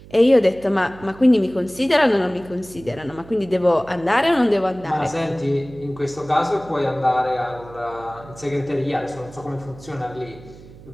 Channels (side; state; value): right; noise; hum, 20 dB below the sound